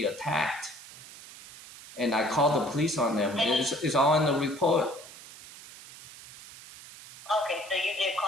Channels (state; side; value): noise; right; hiss, 17 dB below the sound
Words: attacked, and I called the police on them. It's all in the report. Okay, so you did